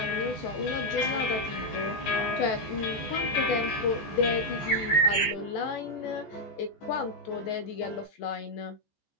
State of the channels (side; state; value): right; late; 14 ms